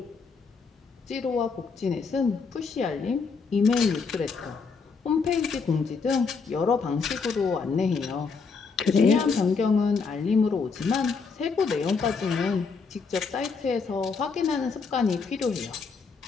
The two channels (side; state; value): right; quieter; 5.0 dB